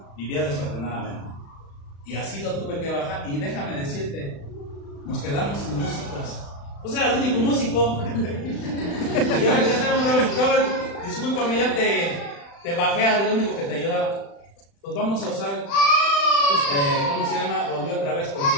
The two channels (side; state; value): right; late; 35 ms